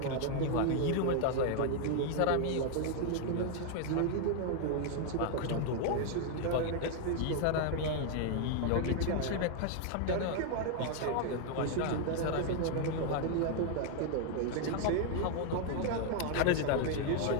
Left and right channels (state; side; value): different; both; correlation 0.00